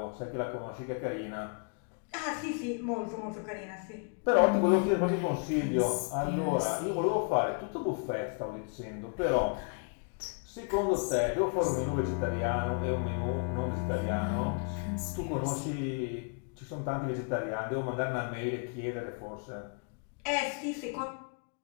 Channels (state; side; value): quieter; right; 39.4 dB